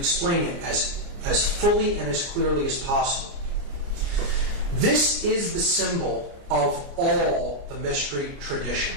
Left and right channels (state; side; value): late; left; 29 ms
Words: it as fully and as clearly as possible. This is the symbol of all the mystery